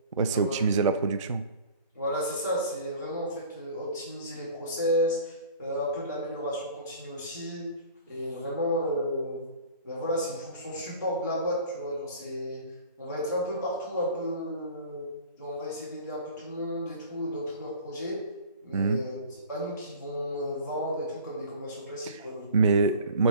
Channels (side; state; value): both; inverted; correlation -0.44